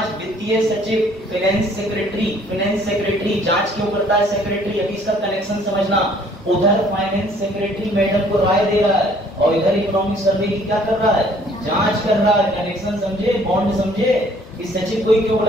वित्तीय सचिव, फाइनेंस सेक्रेटरी। जांच क्यों करता है सेक्रेटरी? अभी इसका कनेक्शन समझना। उधर फाइनेंस सेक्रेटरी मैडम को राय दे रहा है और इधर इकोनॉमिक सर्वे की क्या कर रहा है? जांच कर रहा है। कनेक्शन समझे, बॉन्ड समझे। इस सचिव को ही क्यों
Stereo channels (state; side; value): normal; both; correlation 0.59